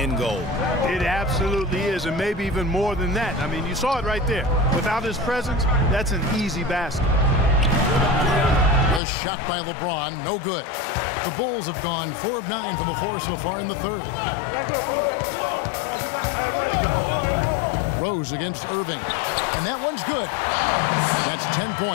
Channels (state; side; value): drops out; right; at 9.0 s